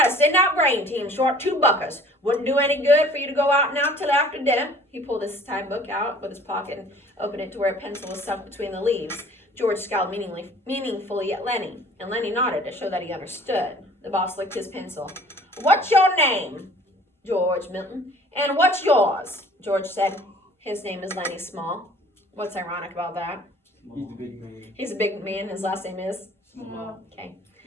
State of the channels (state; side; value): normal; both; correlation 0.51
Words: to send out grain team short 2 buckers. Wouldn't do any good for you to go out now till after dinner. He pulled his time book out with his pocket and opened it to where a pencil was sunk between the leaves. George scowled meaningfully at Lenny, and Lenny nodded to show that he understood. The boss licked his pencil. What's your name? George Milton. And what's yours? George said. His name is Lenny Small. What's ironic about that? He's the big man. He's a big man. His last name is? Small. Okay.